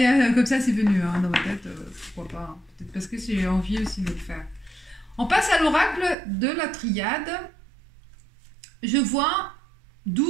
comme ça c'est venu, hein, dans ma tête, pourquoi pas, hein. Peut-être parce que j'ai envie aussi de le faire. On passe à l'oracle de la triade. Je vois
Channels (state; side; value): drops out; left; at 6.2 s